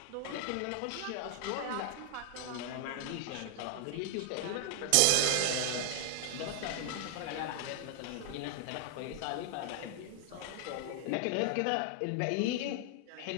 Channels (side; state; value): both; different; correlation 0.00